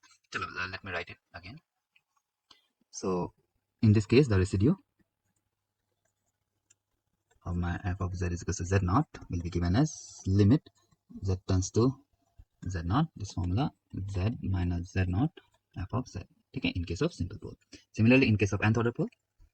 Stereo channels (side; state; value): both; identical; correlation 1.00